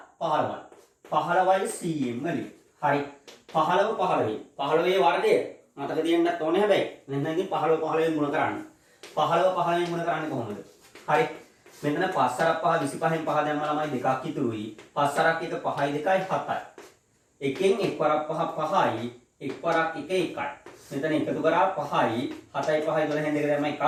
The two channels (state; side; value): identical; both; correlation 1.00